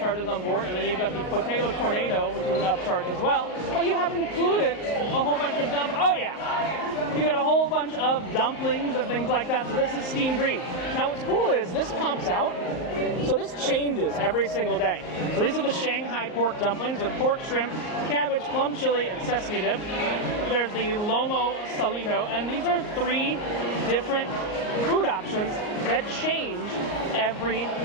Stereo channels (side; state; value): right; late; 38 ms